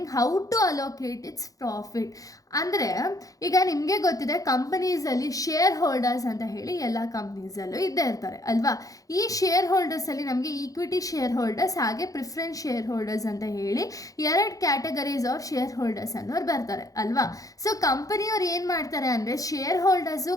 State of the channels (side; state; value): right; late; 0.17 ms